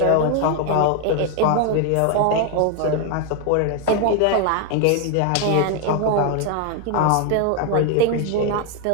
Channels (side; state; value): both; different; correlation 0.01